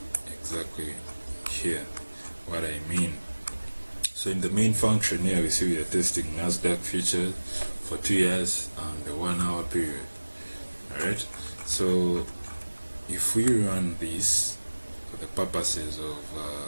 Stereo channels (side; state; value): both; inverted; correlation -1.00